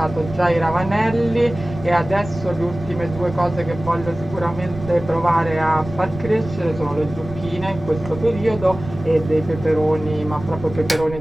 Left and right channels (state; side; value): noise; right; rumble, 12 dB below the sound